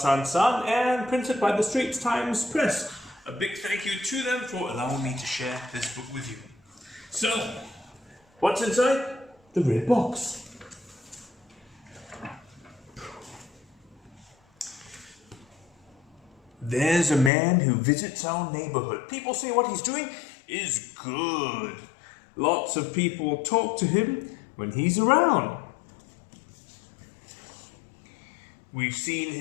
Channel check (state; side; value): drops out; right; at 17.3 s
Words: San and printed by the Straits Times Press. A big thank you to them for allowing me to share this book with you. So, what's inside the red box? There's a man who visits our neighborhood. People say what he's doing is good. Lots of people talk to him when he's around. We've seen